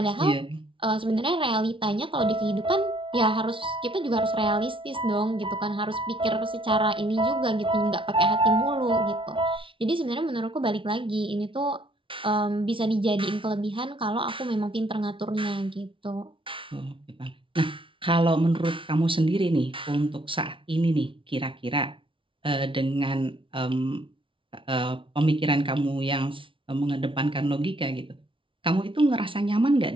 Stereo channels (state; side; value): late; left; 0.25 ms